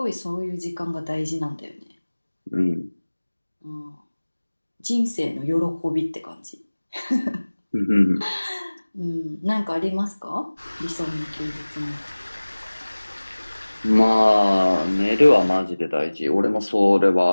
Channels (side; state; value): both; inverted; correlation -1.00